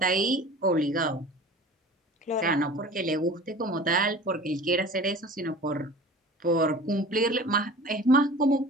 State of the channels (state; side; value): normal; both; correlation 0.40